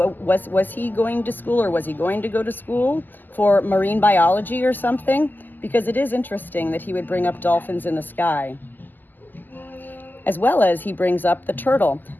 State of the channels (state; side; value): late; right; 0.087 ms